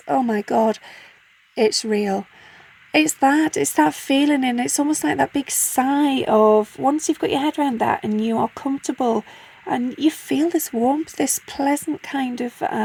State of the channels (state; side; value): identical; both; correlation 1.00